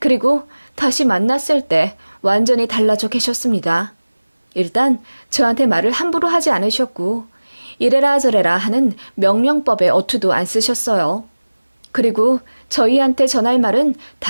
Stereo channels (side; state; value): both; inverted; correlation -1.00